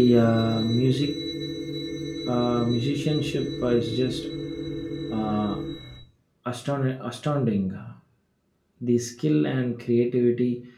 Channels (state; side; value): identical; both; correlation 1.00